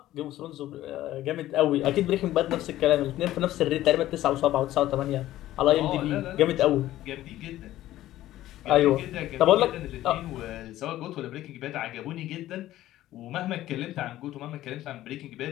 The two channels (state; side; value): quieter; right; 14.5 dB